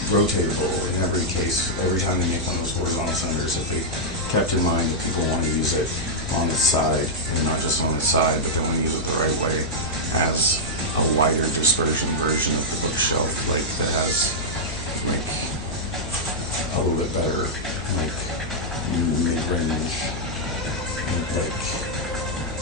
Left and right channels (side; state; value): left; noise; hum, 10 dB below the sound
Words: rotatable in every case, every time they make one of those horizontal centers, if they kept in mind that people want to use it on the side, and not just on the side, but they want to use it the right way, as a wider dispersion version of the bookshelf, like that has like a little bit better, like mid-range, like